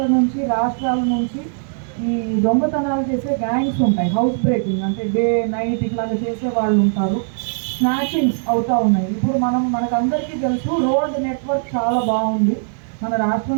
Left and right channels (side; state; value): left; silent; digital silence